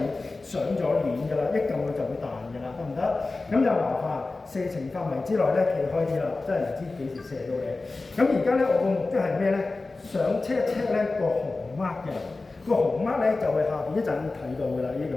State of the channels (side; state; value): right; quieter; 3.5 dB